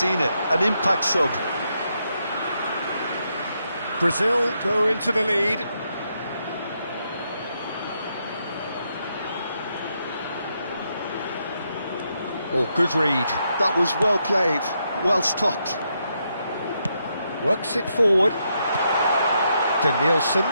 it, an impact sub. Brazil go into the lead. Oh, good read. That was well played, well stopped. Works it forward. Danielson.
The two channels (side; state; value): both; inverted; correlation -0.80